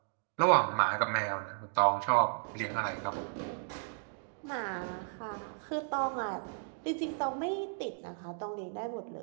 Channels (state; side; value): silent; left; digital silence